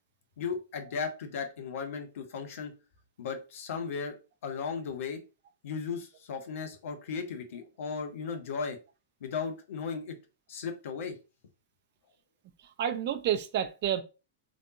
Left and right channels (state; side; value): inverted; both; correlation -0.30